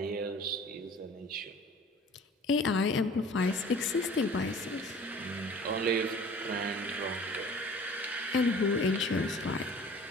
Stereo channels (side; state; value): both; normal; correlation 0.46